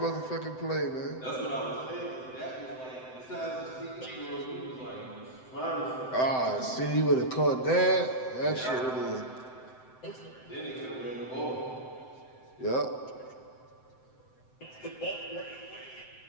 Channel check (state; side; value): late; right; 7.8 ms